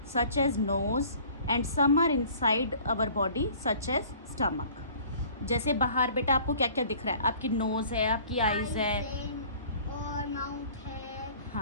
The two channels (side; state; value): both; inverted; correlation -0.50